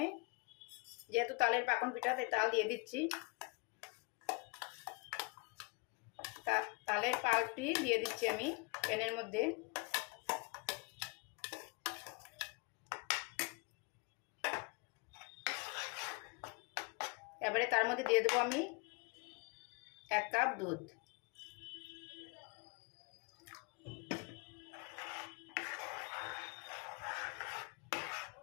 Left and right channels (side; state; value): right; quieter; 29.3 dB